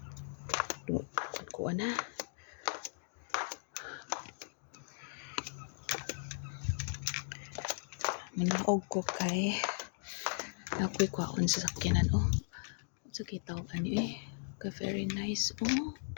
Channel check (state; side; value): silent; right; digital silence